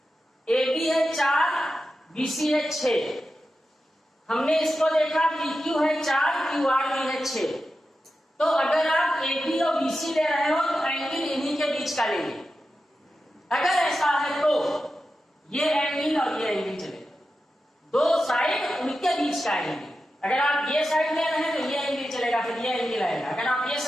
ए बी है 4, बी सी है 6। हमने इसको देखा पी क्यू है 4, क्यू आर भी है 6। तो अगर आप ए बी और बी सी ले रहे हो तो एंगल इन्हीं के बीच का लेंगे। अगर ऐसा है तो ये एंगल और ये एंगल चलेगा, दो साइड उनके बीच का एंगल। अगर आप ये साइड ले रहे हैं तो ये एंगल चलेगा, फिर ये एंगल आएगा। अगर आप ये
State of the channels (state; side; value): normal; both; correlation 0.91